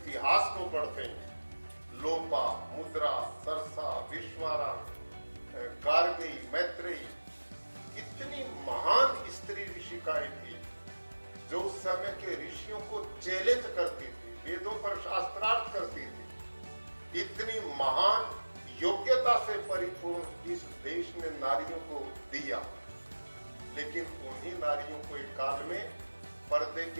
को पढ़ते हैं। लोपा, मुद्रा, सरसा, विश्वारा, गार्गी, मैत्रेयी, कितनी महान स्त्री ऋषिकाएं थी जो उस समय के ऋषियों को चैलेंज करती थी, वेदों पर शास्त्रार्थ करती थी। इतनी महान योग्यता से परिपूर्ण इस देश ने नारियों को दिया, लेकिन उन्हीं नारियों को एक काल में पर्दे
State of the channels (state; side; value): inverted; both; correlation -1.00